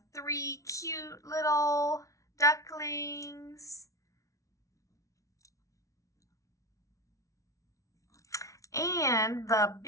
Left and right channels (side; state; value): right; late; 0.16 ms